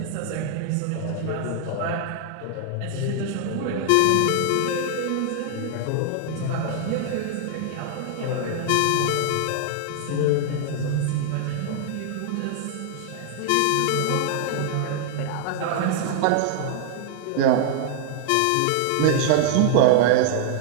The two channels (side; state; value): both; different; correlation -0.01